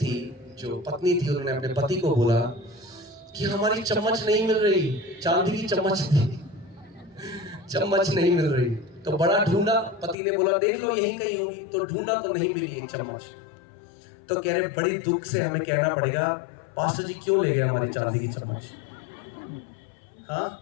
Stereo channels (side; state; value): right; drops out; at 10.2 s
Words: जो पत्नी थी, उन्होंने अपने पति को बोला कि हमारी चम्मच नहीं मिल रही, चांदी की चम्मच थी, चम्मच नहीं मिल रही। तो बड़ा ढूंढा, पति ने बोला देख लो यहीं कहीं होगी, तो ढूंढा तो नहीं मिली एक चम्मच। तो कह रहे बड़ी दुख से हमें कहना पड़ेगा, पास्टर जी क्यों ले गए हमारी चांदी की चम्मच। हाँ,